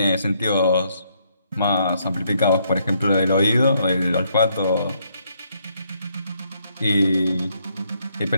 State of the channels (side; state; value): both; inverted; correlation -0.72